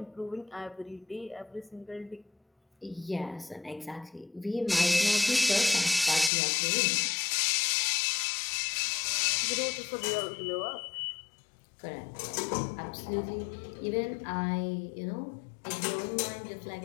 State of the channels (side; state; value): right; drops out; at 6.3 s